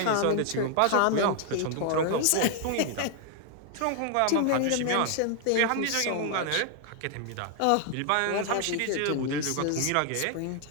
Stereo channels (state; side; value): different; both; correlation 0.00